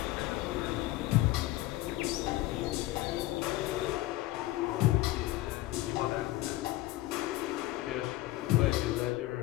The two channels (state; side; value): quieter; right; 17.4 dB